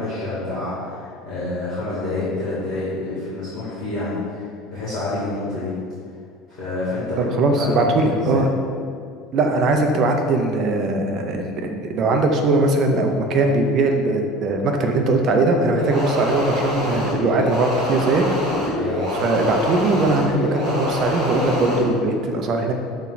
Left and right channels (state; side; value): normal; both; correlation 0.41